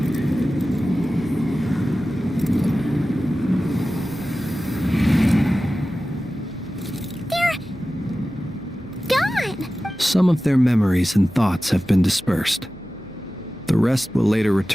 Some of their memories and thoughts have been dispersed. The rest will later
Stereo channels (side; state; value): right; noise; hum, 25 dB below the sound